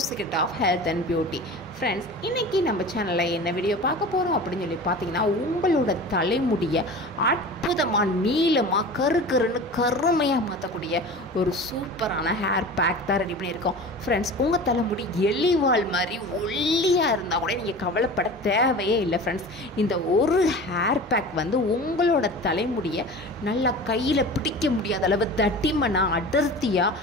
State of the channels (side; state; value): both; normal; correlation 0.36